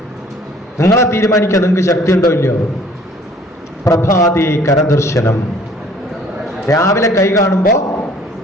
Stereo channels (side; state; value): both; normal; correlation 0.55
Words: നിങ്ങളെ തീരുമാനിക്കുക നിങ്ങൾക്ക് ശക്തി ഉണ്ടോ ഇല്ലയോ. പ്രഭാതേ കരദർശനം, രാവിലെ കൈ കാണുമ്പോൾ